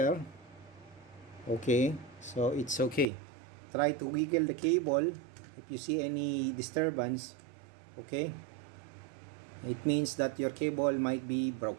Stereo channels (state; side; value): drops out; left; at 3.1 s